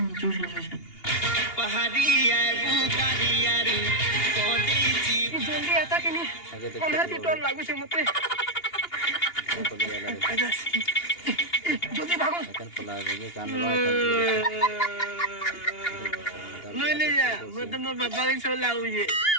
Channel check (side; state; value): right; late; 2.8 ms